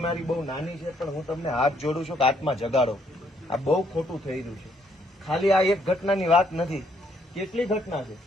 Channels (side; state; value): both; normal; correlation 0.70